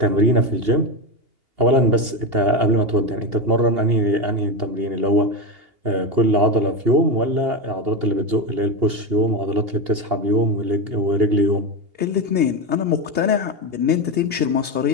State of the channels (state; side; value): late; left; 2.8 ms